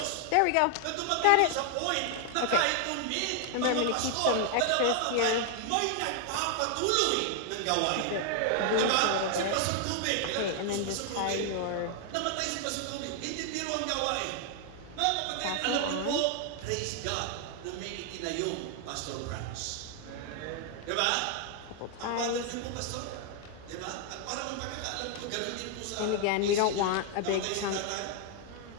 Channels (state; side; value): different; both; correlation 0.00